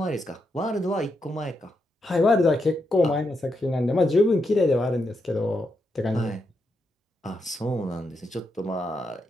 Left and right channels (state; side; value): normal; both; correlation 0.83